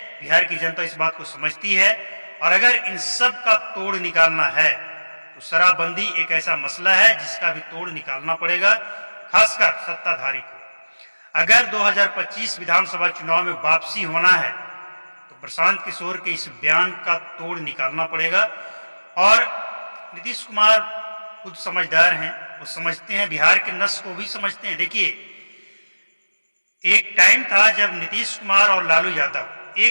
बिहार की जनता इस बात को समझती है। और अगर इन सब का तोड़ निकालना है तो शराबबंदी एक ऐसा मसला है जिसका भी तोड़ निकालना पड़ेगा, खासकर सत्ताधारी को। अगर 2025 विधानसभा चुनाव में वापसी होना है तो प्रशांत किशोर के इस बयान का तोड़ निकालना पड़ेगा। और नीतीश कुमार खुद समझदार हैं, वो समझते हैं, बिहार के नस को भी समझते हैं। देखिए, एक टाइम था जब नीतीश कुमार और लालू यादव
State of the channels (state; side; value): inverted; both; correlation -1.00